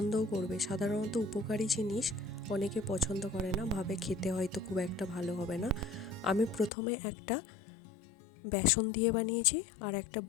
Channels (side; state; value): right; drops out; at 6.7 s